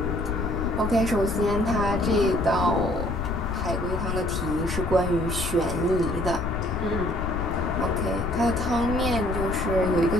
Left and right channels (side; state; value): left; noise; rumble, 4 dB below the sound